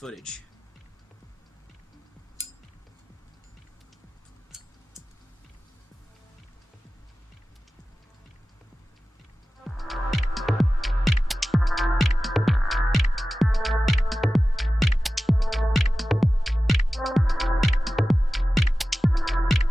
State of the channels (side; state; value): both; normal; correlation 0.95